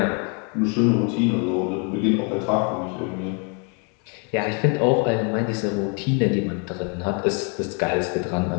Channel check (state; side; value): quieter; right; 36.6 dB